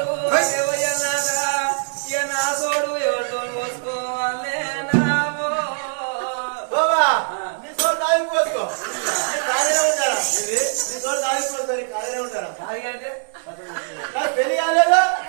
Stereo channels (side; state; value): left; silent; digital silence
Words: వయ్యన్నాడా ఇక నా సోడు ఎవరితో పోసుకోవాలే నావో బాబా నీ సోడు పెళ్లి కాలేనే ఉంటారా ఖాళీగా అంటే నాకు పెళ్లి కాలేదా